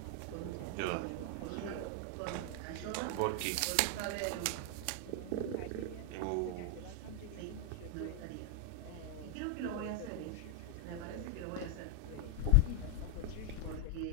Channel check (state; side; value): different; both; correlation 0.00